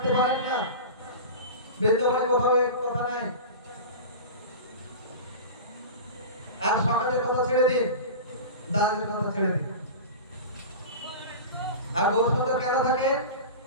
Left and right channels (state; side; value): inverted; both; correlation -0.30